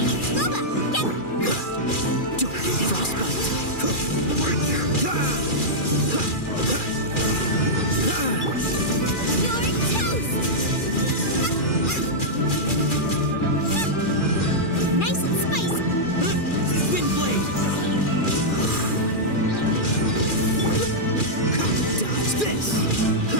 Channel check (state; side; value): late; right; 2.4 ms